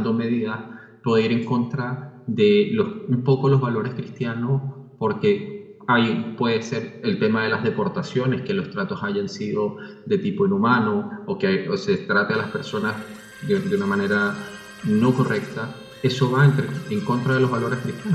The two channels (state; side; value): identical; both; correlation 1.00